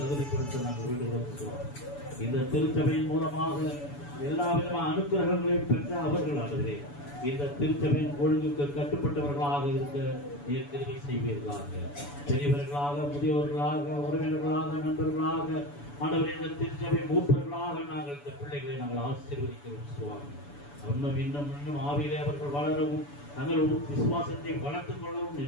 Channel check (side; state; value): right; late; 7.0 ms